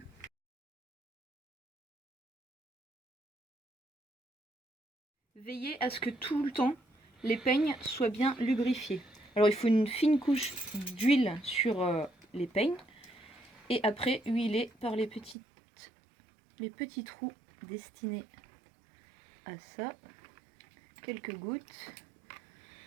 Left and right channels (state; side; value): drops out; left; at 15.4 s